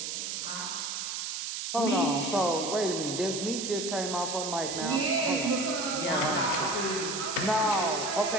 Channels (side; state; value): right; noise; hiss, 4 dB below the sound